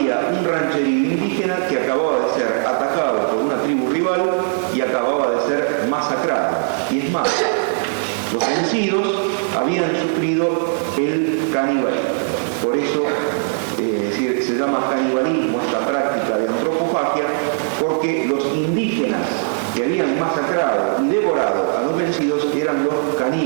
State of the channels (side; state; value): left; silent; digital silence